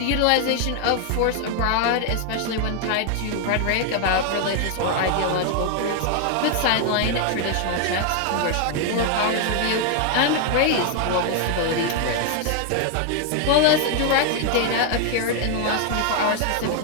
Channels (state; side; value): different; both; correlation 0.00